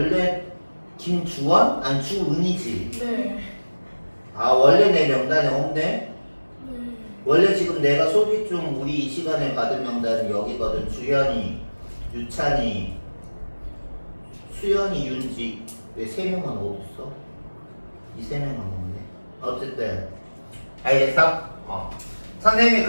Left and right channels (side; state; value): both; inverted; correlation -1.00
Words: 김주원? 아니 주은이지. 네. 원래 내 명단에 없네? 네. 원래 지금 내가 소개 중 우리 이 시간에 받은 명단은 여기거든. 주현이, 유찬이, 수연이, 윤지. 왜 3명은 어딨어? 이 3명은 없네. 어쨌든 알겠어? 선생님이